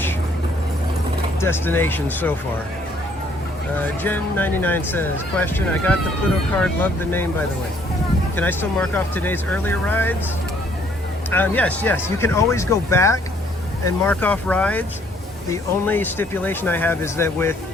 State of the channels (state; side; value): normal; both; correlation 0.64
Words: destinations so far. Jen99 says, question, I got the Pluto card, love the name by the way. Can I still mark off today's earlier rides? Yes, you can always go back and mark off rides. The only stipulation I have is that with